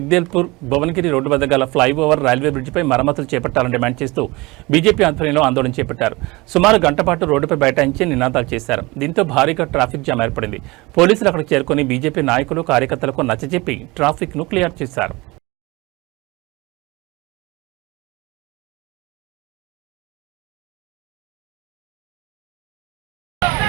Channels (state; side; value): quieter; left; 23.1 dB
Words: భువనగిరి రోడ్డు వద్ద గల ఫ్లైఓవర్ రైల్వే బ్రిడ్జిపై మరమ్మతులు చేపట్టాలని డిమాండ్ చేస్తూ బీజేపీ ఆధ్వర్యంలో ఆందోళన చేపట్టారు. సుమారు గంట పాటు రోడ్డుపై బైఠాయించి నినాదాలు చేశారు. దీంతో భారీగా ట్రాఫిక్ జామ్ ఏర్పడింది. పోలీసులు అక్కడికి చేరుకుని బీజేపీ నాయకులు కార్యకర్తలకు నచ్చజెప్పి ట్రాఫిక్ ను క్లియర్ చేశారు.